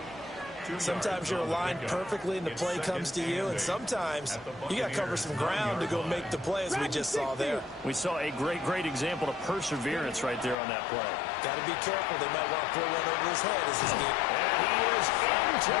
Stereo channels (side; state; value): right; drops out; at 10.6 s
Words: Sometimes you're aligned perfectly and the play comes to you, and sometimes you got to cover some ground to go make the play, as we just saw there. We saw a great example of perseverance right there on that play. Got to be careful. They might want to throw one over his head as his game. And he is into